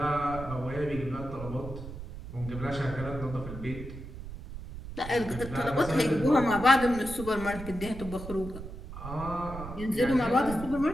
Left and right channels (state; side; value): noise; right; rumble, 10 dB below the sound